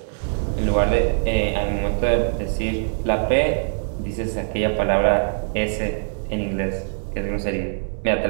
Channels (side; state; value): left; silent; digital silence